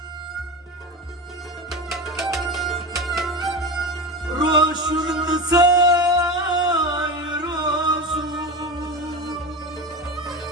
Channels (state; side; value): normal; both; correlation 0.24